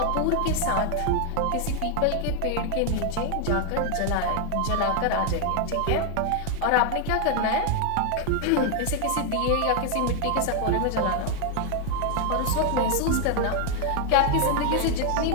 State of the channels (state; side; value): different; both; correlation 0.00